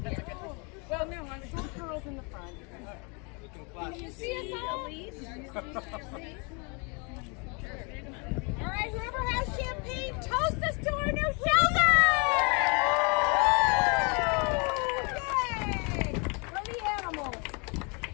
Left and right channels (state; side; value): quieter; right; 32.8 dB